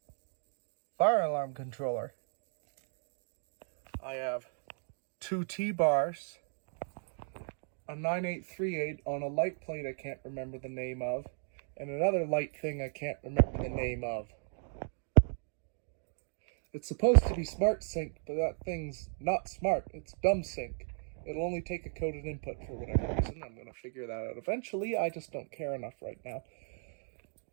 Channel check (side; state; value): left; silent; 54 dB below the other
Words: fire alarm controller. I have 2 T-bars, a 9838 on a light plate I can't remember the name of, and another light thing I can't remember the name of. It's supposed to be smart sync, but that thing's not smart. It's dumb sync. It'll only take a coded input for whatever reason. I'm going to figure that out eventually. I just don't care enough right now.